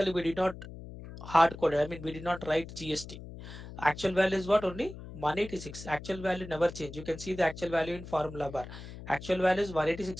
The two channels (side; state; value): left; noise; hum, 13 dB below the sound